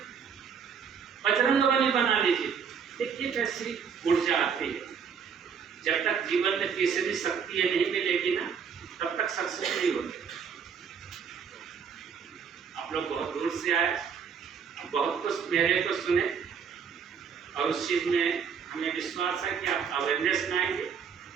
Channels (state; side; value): quieter; left; 6.8 dB